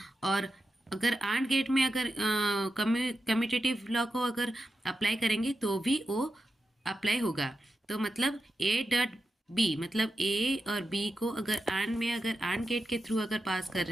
और अगर आंड गेट में अगर कम्यूटेटिव लॉ को अगर अप्लाई करेंगे तो भी वो अप्लाई होगा। तो मतलब ए डॉट बी, मतलब ए और बी को अगर आंड गेट के थ्रू अगर पास कर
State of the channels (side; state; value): both; normal; correlation 0.89